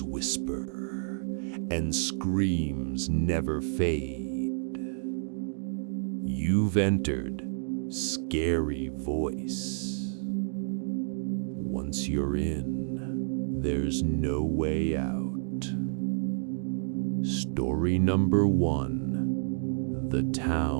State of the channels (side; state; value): left; silent; digital silence